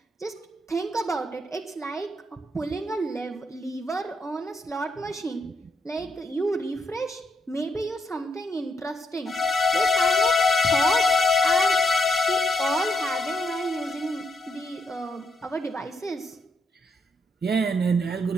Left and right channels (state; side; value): normal; both; correlation 0.79